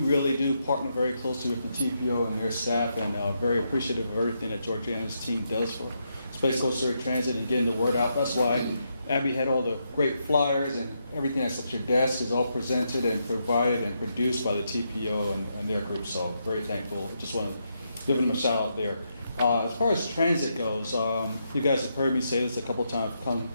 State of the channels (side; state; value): both; inverted; correlation -0.81